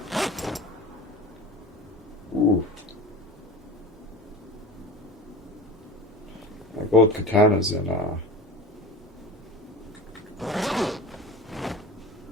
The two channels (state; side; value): normal; both; correlation 0.33